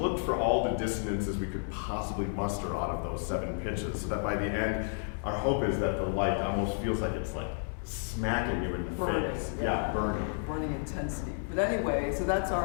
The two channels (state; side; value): silent; right; 57 dB below the other